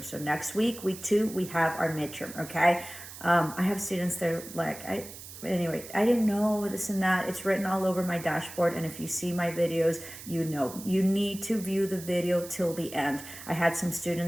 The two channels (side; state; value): right; noise; hiss, 14 dB below the sound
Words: So next week, week 2, we have our midterm, okay? I have students that are like, I didn't know this and that. It's written all over my dashboard. And if you see my videos, you need to view the video till the end. I had some